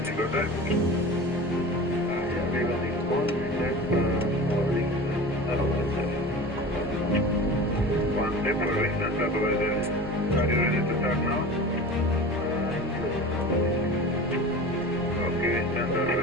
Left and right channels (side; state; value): both; normal; correlation 0.34